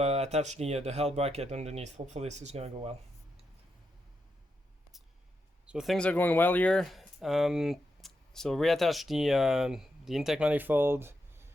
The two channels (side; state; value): both; normal; correlation 0.84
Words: attach the L bracket underneath. Hopefully this is going to go well. So things are going well here. So reattach the intake manifold,